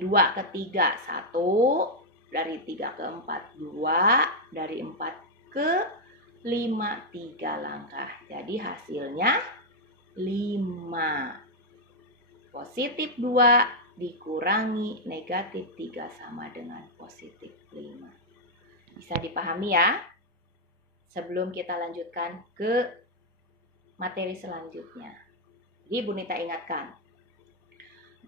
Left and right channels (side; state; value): both; normal; correlation -0.02